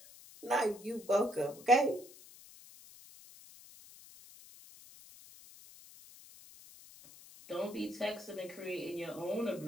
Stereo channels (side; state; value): left; noise; hiss, 20 dB below the sound